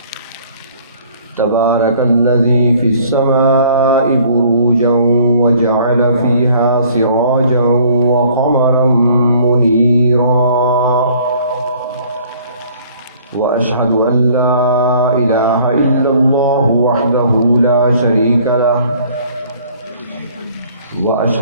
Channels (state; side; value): inverted; both; correlation -0.56